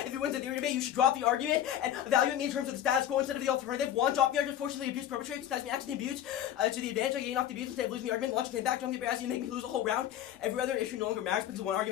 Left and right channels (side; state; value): right; quieter; 11.0 dB